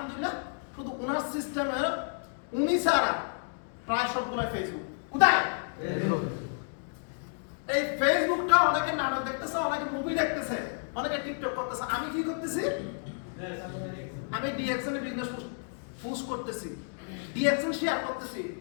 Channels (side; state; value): right; silent; digital silence